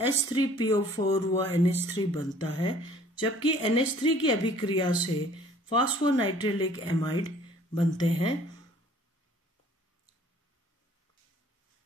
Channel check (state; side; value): normal; both; correlation 0.54